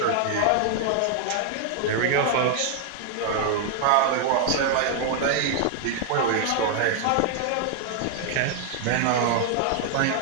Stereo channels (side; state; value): both; different; correlation 0.00